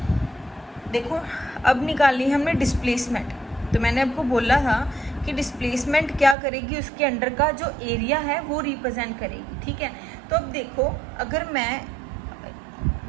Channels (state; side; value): drops out; left; at 6.4 s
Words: देखो अब निकालनी है हमने डिस्प्लेसमेंट। तो मैंने आपको बोला था कि डिस्प्लेसमेंट क्या करेगी, उसके अंडर का जो एरिया है वो रिप्रेजेंट करेगी, ठीक है। तो अब देखो अगर